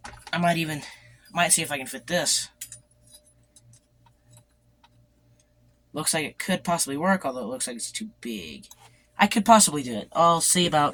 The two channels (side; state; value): both; identical; correlation 1.00